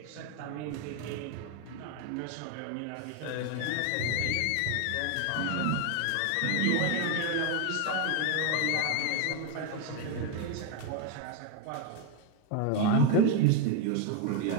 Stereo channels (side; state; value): both; different; correlation 0.01